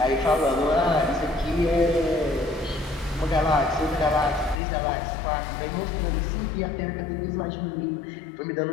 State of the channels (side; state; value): right; drops out; at 4.5 s